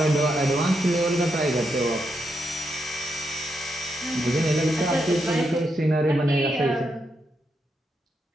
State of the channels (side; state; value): both; normal; correlation 0.82